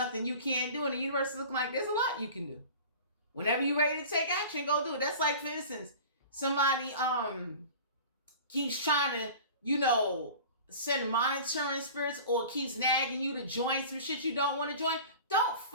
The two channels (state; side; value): inverted; both; correlation -0.39